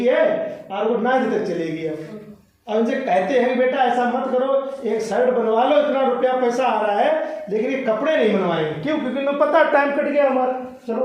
है और वो 9 तक चलेगी। अब इनसे कहते हैं बेटा ऐसा मत करो, एक शर्ट बनवा लो, इतना रुपया पैसा आ रहा है, लेकिन ये कपड़े नहीं बनवाएंगे। क्यों? क्योंकि इन्हें पता टाइम कट गया हमारा।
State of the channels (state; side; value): identical; both; correlation 1.00